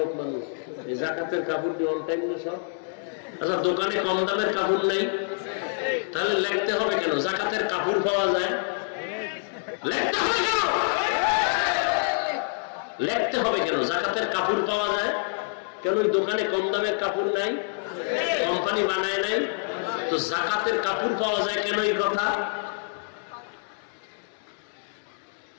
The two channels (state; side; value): silent; right; digital silence